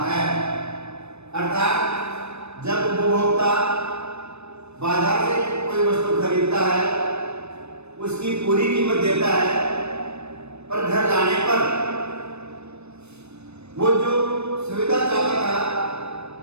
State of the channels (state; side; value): late; left; 0.81 ms